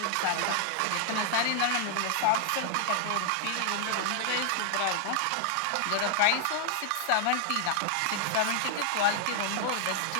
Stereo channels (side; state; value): both; different; correlation 0.00